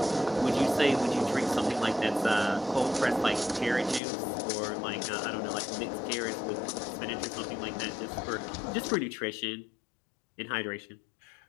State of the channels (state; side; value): drops out; right; at 4.0 s